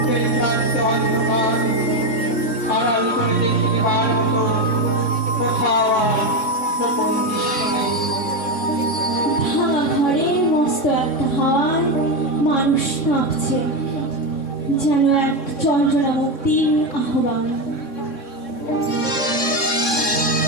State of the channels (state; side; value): late; right; 3.6 ms